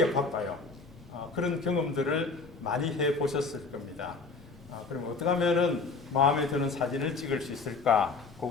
바빠요. 그런 경험들을 많이 해 보셨을 겁니다. 그럼 어떻게 하면은 마음에 드는 사진을 찍을 수 있을까?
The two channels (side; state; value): right; quieter; 4.3 dB